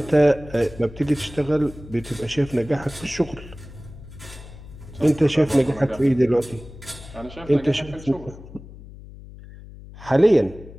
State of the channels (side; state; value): left; noise; hum, 17 dB below the sound